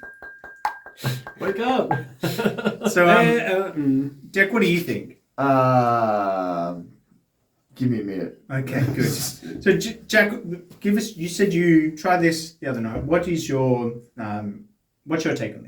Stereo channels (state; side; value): identical; both; correlation 1.00